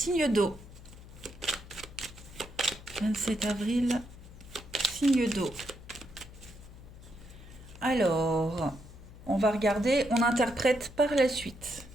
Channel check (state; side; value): noise; left; hum, 17 dB below the sound